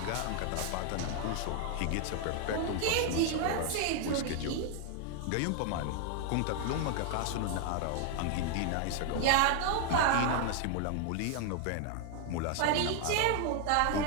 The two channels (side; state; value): both; different; correlation 0.00